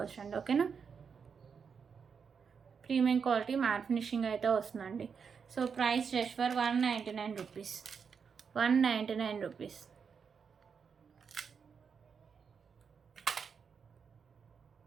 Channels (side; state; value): left; quieter; 6.2 dB